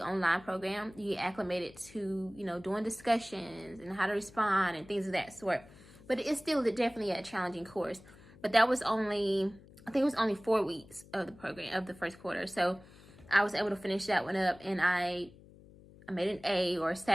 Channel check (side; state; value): left; noise; hum, 22 dB below the sound